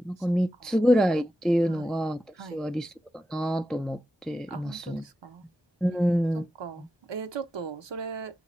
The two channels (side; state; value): both; normal; correlation 0.90